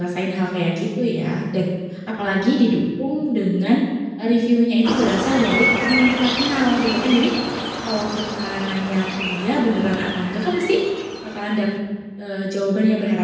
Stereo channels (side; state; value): both; identical; correlation 1.00